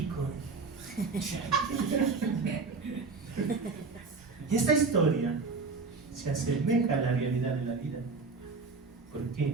Y esta historia se asemeja a la realidad de la vida. ¿Por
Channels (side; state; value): left; quieter; 4.3 dB